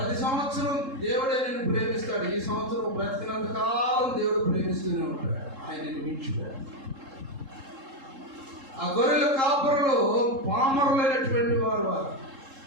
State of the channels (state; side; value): late; left; 3.7 ms